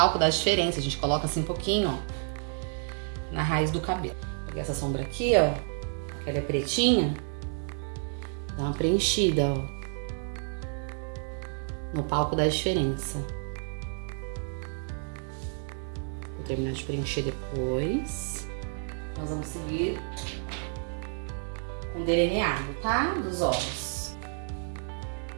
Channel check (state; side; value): silent; left; 58 dB below the other